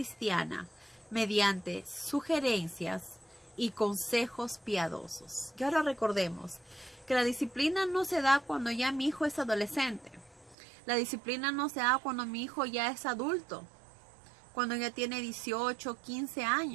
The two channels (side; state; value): left; drops out; at 10.6 s